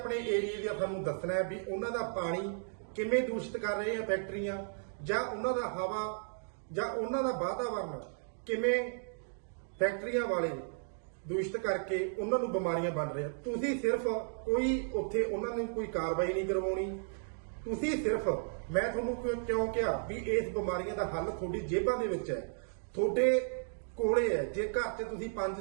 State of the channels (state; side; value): silent; left; digital silence